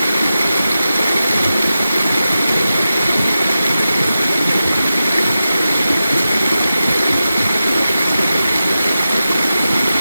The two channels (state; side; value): inverted; both; correlation -0.93